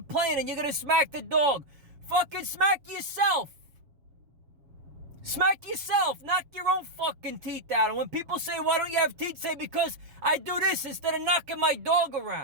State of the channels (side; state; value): left; late; 7.3 ms